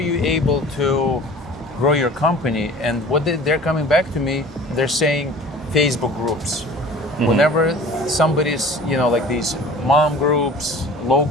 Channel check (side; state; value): both; normal; correlation 0.44